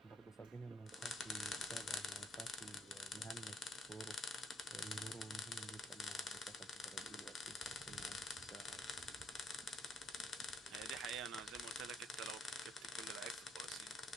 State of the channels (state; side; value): normal; both; correlation 0.69